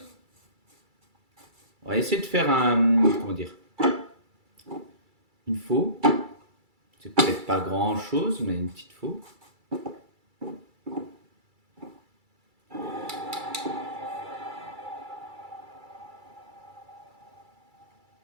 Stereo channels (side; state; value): left; late; 2.3 ms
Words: On va essayer de faire un... Comment dire? Une faux. C'est peut-être pas grand-chose, mais une petite faux.